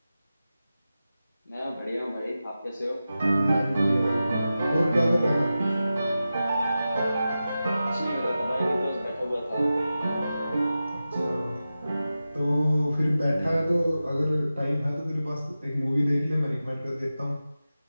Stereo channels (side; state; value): both; inverted; correlation -0.93